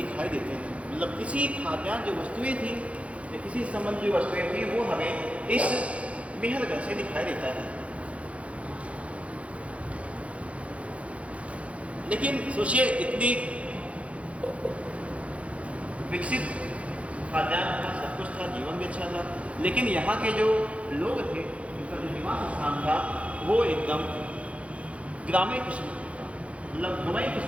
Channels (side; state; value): left; late; 0.063 ms